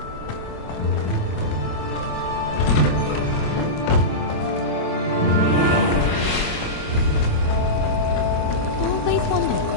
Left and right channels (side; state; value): right; late; 25 ms